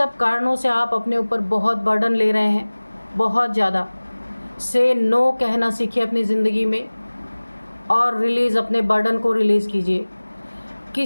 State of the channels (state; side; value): inverted; both; correlation -1.00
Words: कारणों से आप अपने ऊपर बहुत बर्डन ले रहे हैं, बहुत ज़्यादा। से नो कहना सीखिए अपनी ज़िंदगी में, और रिलीज़, अपने बर्डन को रिलीज़ कीजिए।